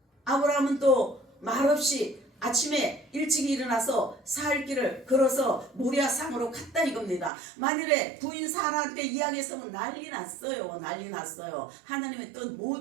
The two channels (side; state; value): left; drops out; at 7.3 s